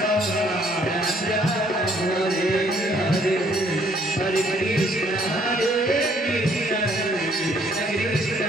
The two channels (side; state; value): both; normal; correlation 0.64